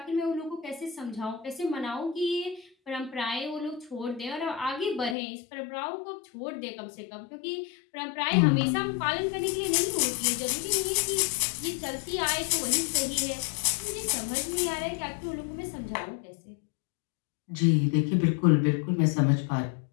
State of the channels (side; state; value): right; drops out; at 5.2 s